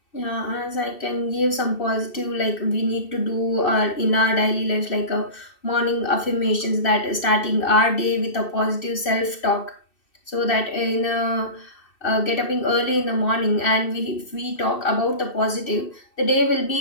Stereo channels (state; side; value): late; right; 2.7 ms